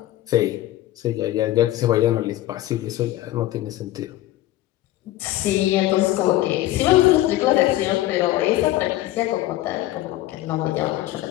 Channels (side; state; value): right; quieter; 15.3 dB